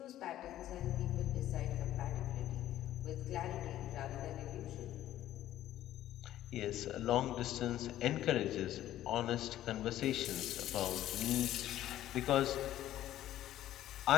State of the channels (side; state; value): right; quieter; 13.1 dB